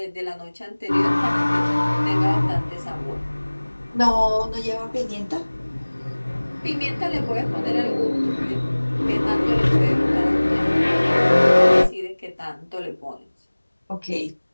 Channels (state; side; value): inverted; both; correlation -1.00